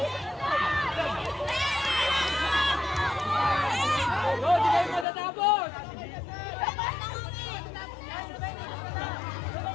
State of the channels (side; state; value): right; drops out; at 5.1 s